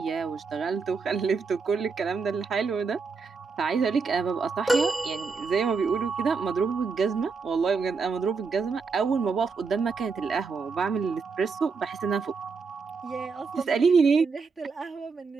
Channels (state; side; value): quieter; left; 4.9 dB